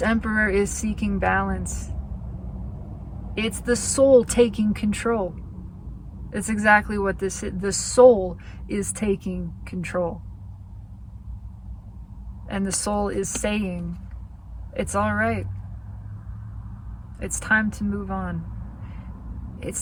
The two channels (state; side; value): identical; both; correlation 1.00